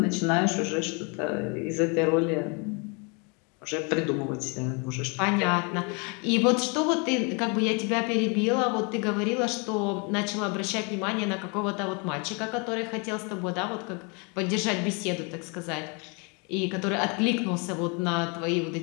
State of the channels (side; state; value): right; quieter; 33.2 dB